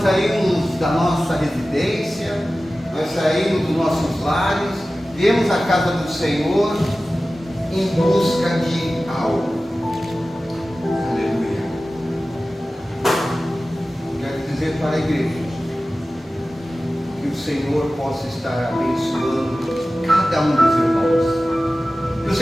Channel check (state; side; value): normal; both; correlation 0.96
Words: nós saímos da nossa residência, nós saímos dos nossos lares, viemos à casa do Senhor em busca de algo. Aleluia. Quero dizer para a igreja que o Senhor possa estar abençoando cada um dos irmãos, que o